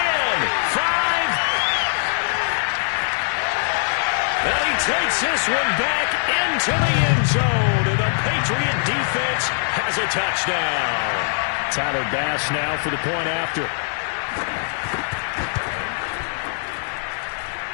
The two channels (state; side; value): silent; right; digital silence